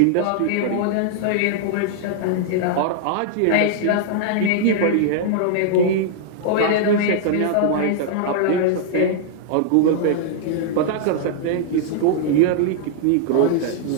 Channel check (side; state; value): both; different; correlation -0.01